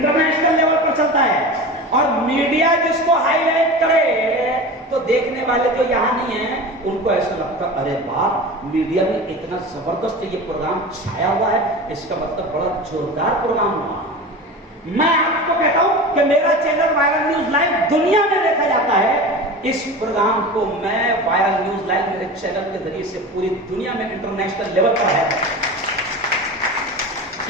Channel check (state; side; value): normal; both; correlation 0.31